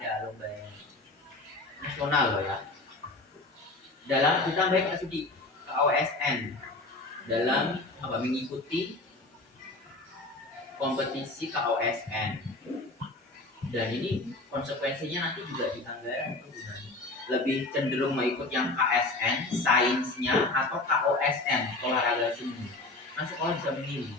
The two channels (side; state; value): right; quieter; 3.0 dB